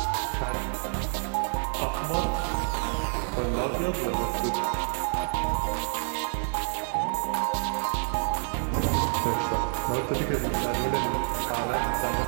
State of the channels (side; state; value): left; silent; digital silence